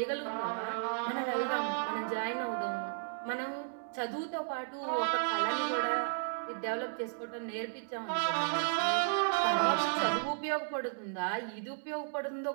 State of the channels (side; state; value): left; silent; digital silence